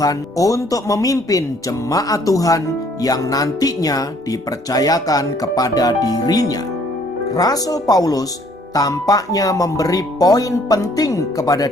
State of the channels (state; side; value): normal; both; correlation 0.61